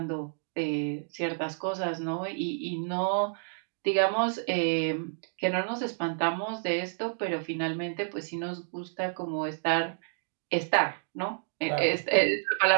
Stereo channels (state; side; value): silent; left; digital silence